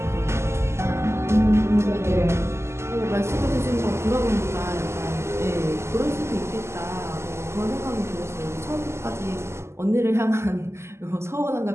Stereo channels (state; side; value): late; left; 0.13 ms